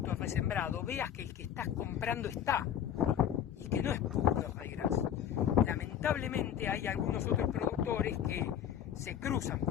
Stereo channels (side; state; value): right; quieter; 9.6 dB